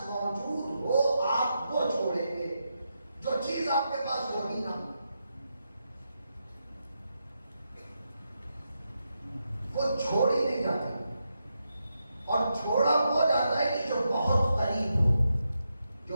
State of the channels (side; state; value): both; inverted; correlation -0.85